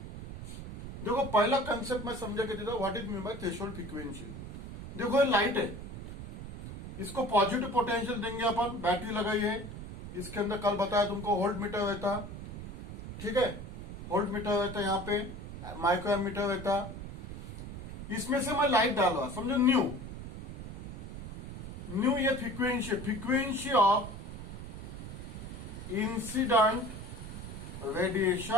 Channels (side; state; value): right; noise; rumble, 10 dB below the sound